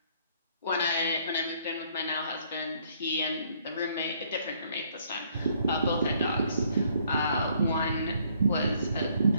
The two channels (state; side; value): inverted; both; correlation -0.65